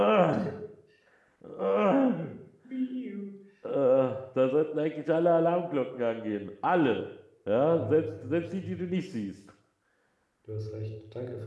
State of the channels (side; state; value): both; identical; correlation 1.00